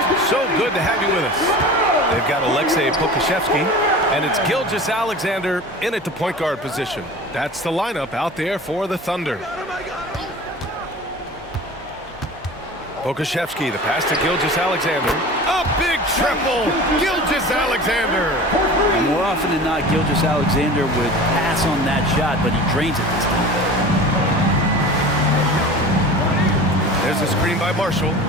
So good to have you with us. They've got Alexei Kokoszewski, and it's Gilgeous-Alexander in at the point guard position. That's the lineup out there for the Thunder. Pokashevsky, the pass to Gilgeous-Alexander. A big triple! Gilgeous-Alexander! More often than not, Gilgeous-Alexander would pass on that shot, but he drains it this time. There's a screen by Marshall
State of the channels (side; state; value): both; normal; correlation 0.37